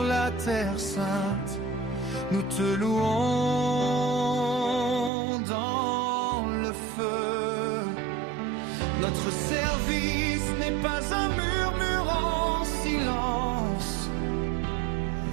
la terre sainte. Nous te louons dans le feu. Notre service n'est pas un murmure en silence,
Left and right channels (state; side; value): drops out; left; at 5.1 s